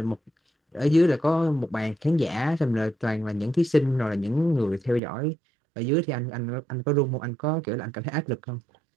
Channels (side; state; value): left; drops out; at 5.0 s